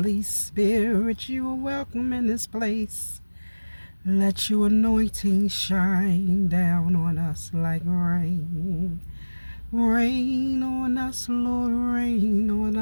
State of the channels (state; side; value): inverted; both; correlation -1.00